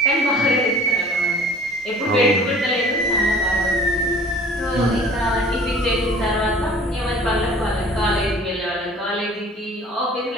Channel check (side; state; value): both; normal; correlation 0.48